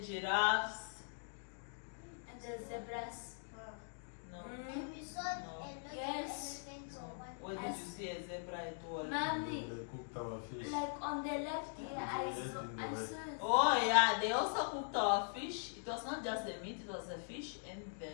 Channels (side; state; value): right; silent; digital silence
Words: the giraffes. And the zebras. No. Mm. We saw No. a lot Yes. of elephants No. on one. What did you see a zebra at all? Mommy, They cooked our fish. like on the left here, Yeah, I we ate saw. in the I wet. saw. Oh yeah, they also cooked our fish. It was not just the meat, it was the fish and